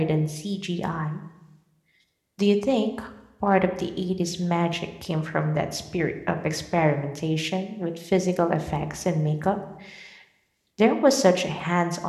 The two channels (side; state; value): both; identical; correlation 1.00